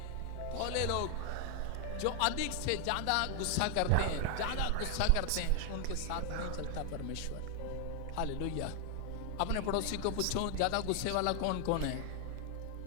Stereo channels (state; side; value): different; both; correlation 0.00